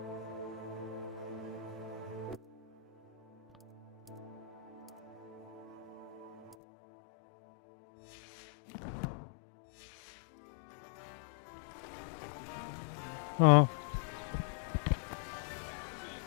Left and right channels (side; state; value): right; drops out; at 6.6 s